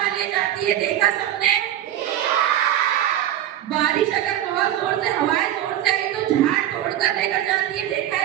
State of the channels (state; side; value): quieter; left; 12.2 dB